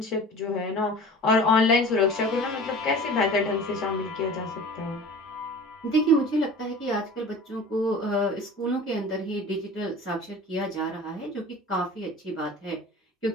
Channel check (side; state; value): both; normal; correlation 0.40